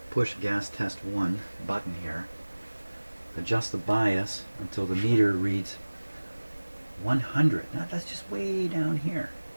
push gas test 1 button here, adjust the bias until the meter reads 100. Now that's just way down here.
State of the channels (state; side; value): inverted; both; correlation -1.00